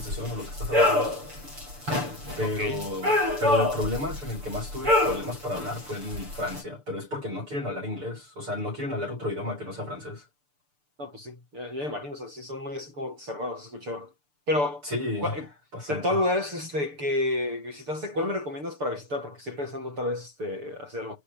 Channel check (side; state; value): left; late; 6.8 ms